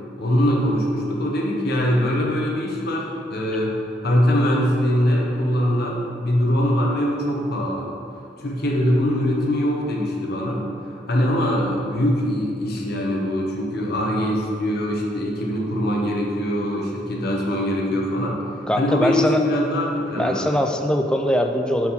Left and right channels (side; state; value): both; normal; correlation 0.74